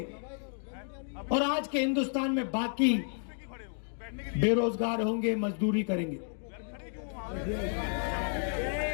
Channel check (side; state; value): right; silent; 56 dB below the other